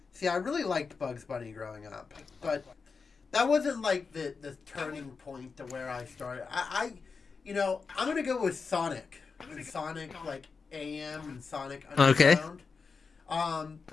see, I really liked Bugs Bunny growing up, but that wasn't like the turning point to where I started. I'm gonna go with Sonic and Sonic like AM and Sonic Okay. Underground.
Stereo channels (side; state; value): right; quieter; 5.0 dB